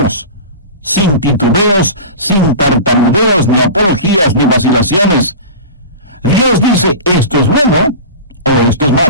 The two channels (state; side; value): inverted; both; correlation -0.31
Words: sin titubeos, sin tartamudeos, ni apologías, ni vacilaciones. Dios dice, esto es bueno o esto es